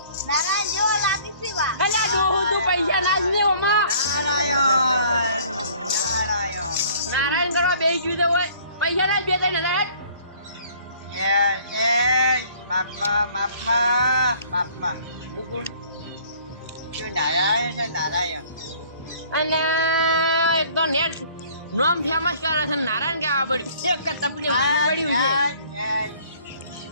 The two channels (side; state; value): both; inverted; correlation -0.55